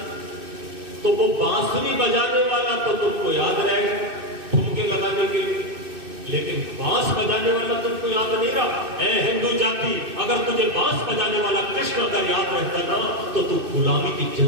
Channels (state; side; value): late; left; 2.6 ms